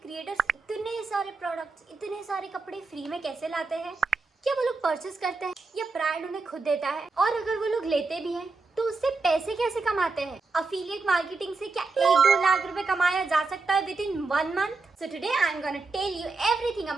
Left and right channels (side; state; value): left; quieter; 3.9 dB